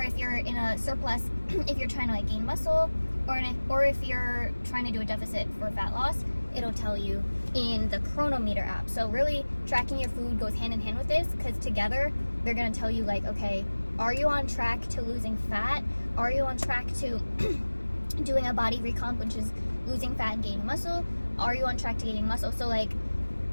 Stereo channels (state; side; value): inverted; both; correlation -1.00